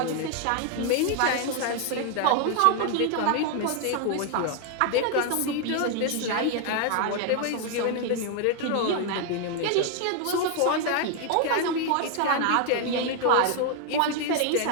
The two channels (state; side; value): different; both; correlation 0.00